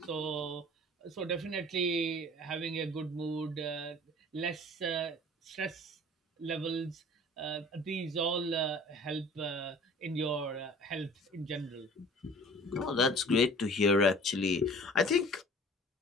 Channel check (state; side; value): normal; both; correlation 0.47